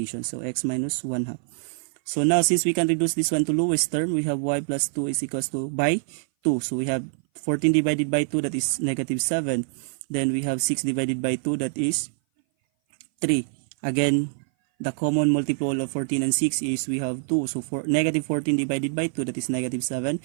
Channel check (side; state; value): left; silent; 58 dB below the other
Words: So x minus 1 half. So now since we can reduce this one to lowest term, we have y plus 2 is equals to by 2. So we have 14 divided by 2, that is negative 7. Then we have 6 divided by 2, that is 3. Again, the common multiple of 14 and 6 is we have 2. So for negative 14 divided by 2, that is negative 7.